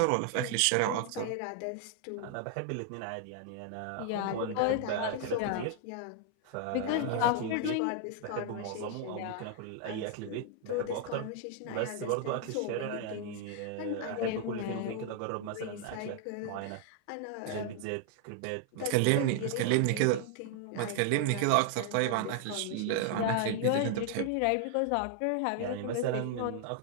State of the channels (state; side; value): different; both; correlation 0.00